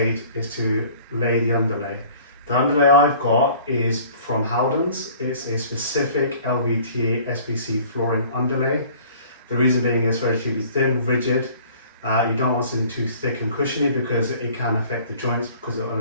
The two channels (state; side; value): inverted; both; correlation -0.51